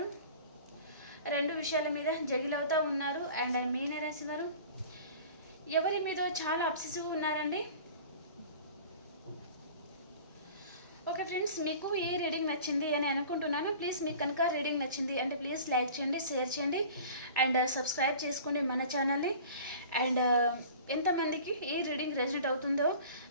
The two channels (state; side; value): inverted; both; correlation -0.43